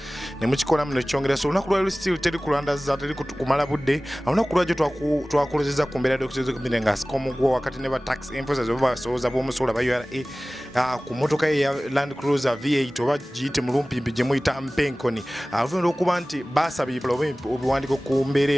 ne mukikola muno kyongera. So olunaku lwaliro still teri kulandaza teri kumala budde. Olunaku lwajjo twakolezeza ku mbeera d'okutezo kumire nga sikomugwa wakati ne ba tax enforcers oba basoza b'omusola ba URA ku motoka ya Land Cruiser V8 oba giyite mulumpimpi gye muyita mpenkoni. Avunira okuba nti basabye obuwandiiko ku mbeera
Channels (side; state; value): both; normal; correlation 0.98